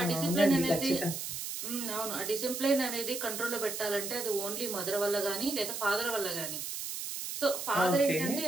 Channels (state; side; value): noise; right; hiss, 5 dB below the sound